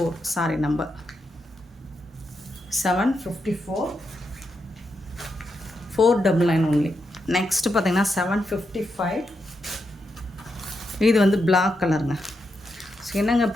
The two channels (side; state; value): both; normal; correlation 0.84